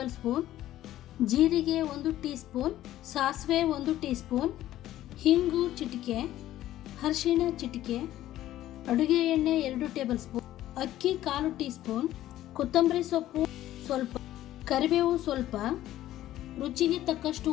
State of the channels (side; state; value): right; quieter; 13.8 dB